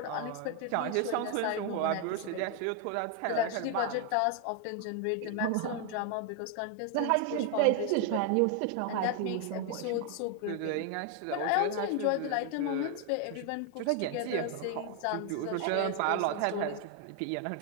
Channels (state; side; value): different; both; correlation 0.00